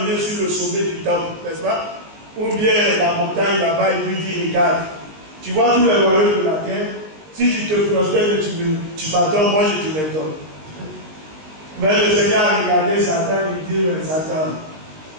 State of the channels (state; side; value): late; left; 19 ms